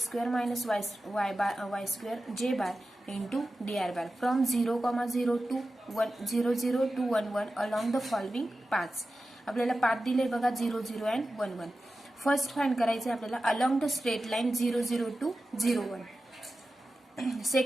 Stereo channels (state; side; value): normal; both; correlation 0.94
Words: minus y square j bar into d R bar from 0,0 to 0 to 1 along the following paths. आपल्याला path दिले बघा 0 0 and 1 1. First find करायचे आपल्याला along the straight line 0 0 to 0 1.